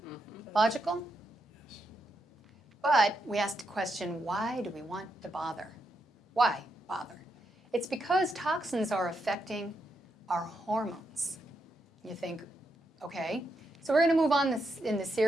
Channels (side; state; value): both; normal; correlation 0.83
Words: Logical? But we asked the question, why do we want to bother? Why bother? It's because toxins are affecting our hormones. You think, okay. So we're going to move on in the